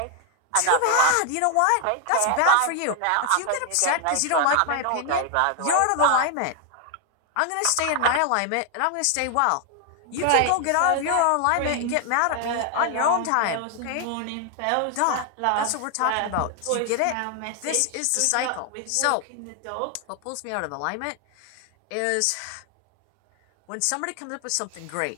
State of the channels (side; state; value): both; different; correlation 0.00